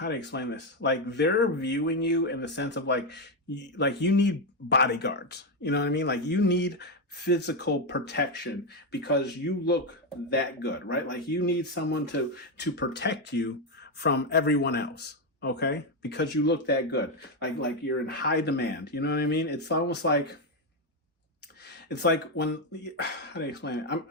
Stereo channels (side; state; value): both; normal; correlation 0.06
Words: to explain this? Like they're viewing you in the sense of like you need bodyguards. You know what I mean? Like you need physical protection because you look that good, right? Like you need someone to protect you from everyone else. Okay. Because you look that good. Like you're in high demand. You know what I mean? It's almost like, it's like when, how do you explain it?